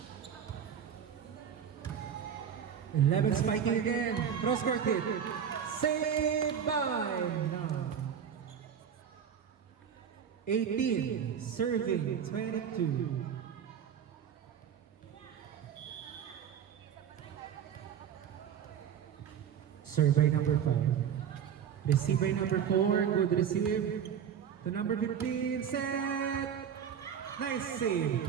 Eleven spiking again. Cross court hit. Saved by no. 18 serving 22. Serve by number 5. Receive by number 4. Good receive. To number 15. Set. Nice save.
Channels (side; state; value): left; quieter; 8.3 dB